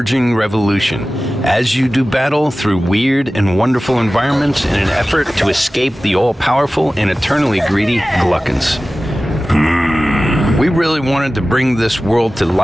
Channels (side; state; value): both; normal; correlation 0.96